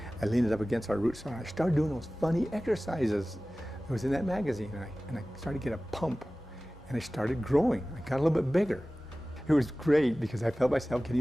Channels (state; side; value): normal; both; correlation 0.97